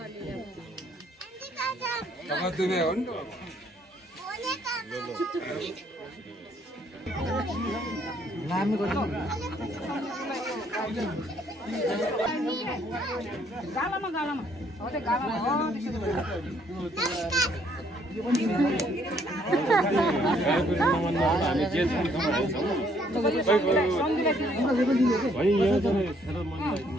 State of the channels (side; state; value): both; normal; correlation 0.66